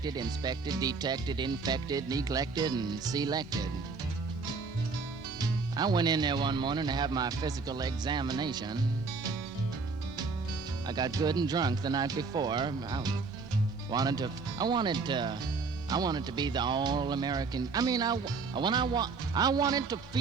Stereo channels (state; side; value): quieter; left; 4.5 dB